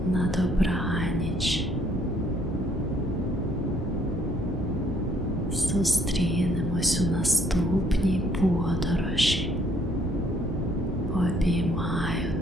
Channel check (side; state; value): both; normal; correlation 0.65